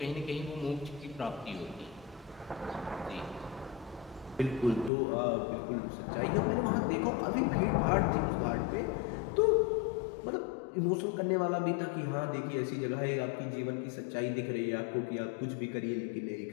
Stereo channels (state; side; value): drops out; right; at 4.9 s